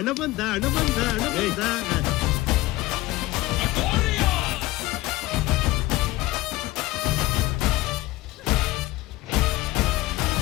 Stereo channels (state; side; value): quieter; right; 18.5 dB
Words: ಬಂದ ಹಣ ಬಂದ ಹಣ ಬಂದ.